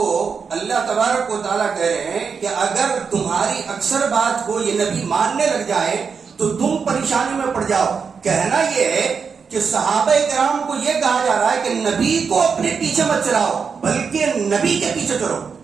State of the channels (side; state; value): left; quieter; 5.8 dB